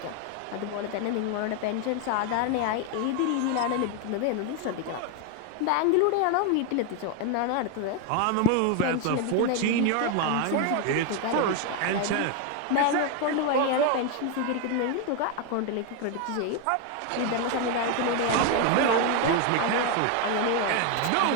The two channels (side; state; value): both; different; correlation 0.01